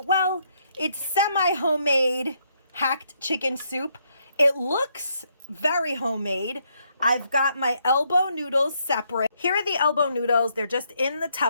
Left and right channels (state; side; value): inverted; both; correlation -0.74